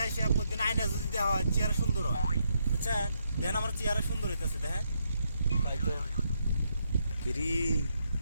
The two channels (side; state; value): both; inverted; correlation -0.78